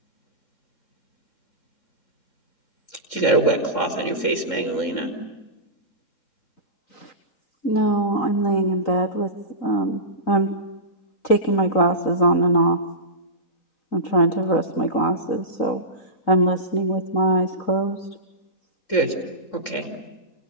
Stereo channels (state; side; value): late; right; 3.7 ms